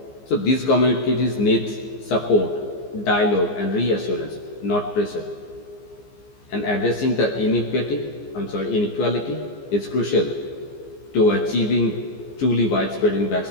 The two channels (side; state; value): right; late; 15 ms